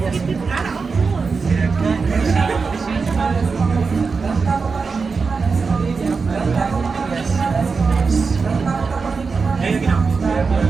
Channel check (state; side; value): quieter; left; 4.8 dB